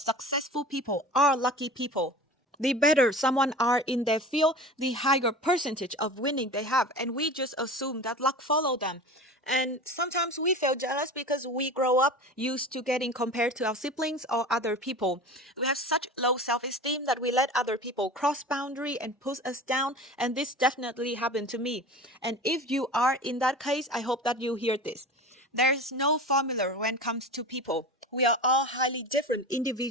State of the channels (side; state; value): both; normal; correlation 0.35